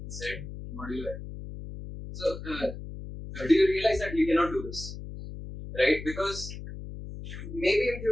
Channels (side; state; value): left; noise; hum, 10 dB below the sound